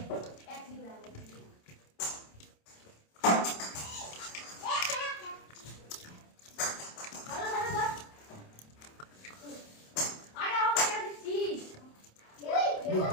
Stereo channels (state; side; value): late; right; 27 ms